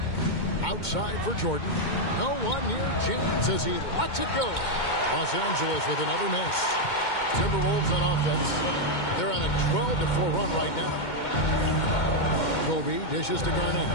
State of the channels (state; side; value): late; right; 2.2 ms